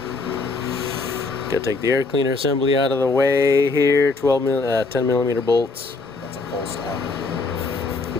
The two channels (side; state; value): right; quieter; 3.8 dB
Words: Gotta take the air cleaner assembly out of the way here. 10 millimeter bolts. That's a pull style.